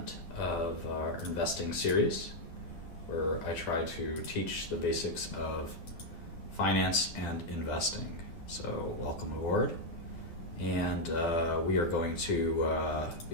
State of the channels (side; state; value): right; late; 12 ms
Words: of our investing series where I try to teach the basics of finance and investing. So welcome aboard. And we are going to